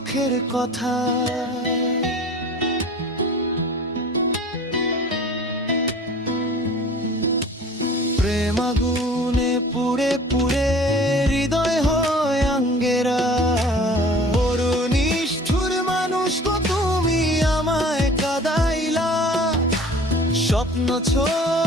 কথা। প্রেম আগুনে পুড়ে পুড়ে হৃদয় হয় আঙ্গেরা। বড় নিষ্ঠুর মানুষ গো তুমি আমায় কাঁদাইলা। স্বপ্ন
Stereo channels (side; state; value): both; normal; correlation 0.45